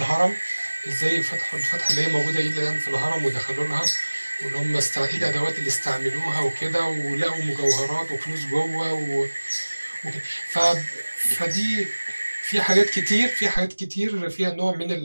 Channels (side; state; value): both; inverted; correlation -1.00